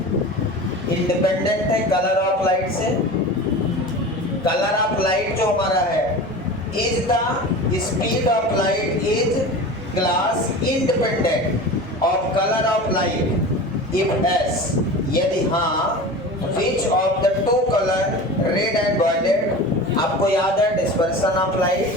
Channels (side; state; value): both; normal; correlation 0.33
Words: इंडिपेंडेंट है कलर ऑफ लाइट से। कलर ऑफ लाइट जो हमारा है, is the speed of light is glass independent of colour of light if yes, यदि हाँ which of the two colour red and violet. आपको याद है डिस्पर्सन ऑफ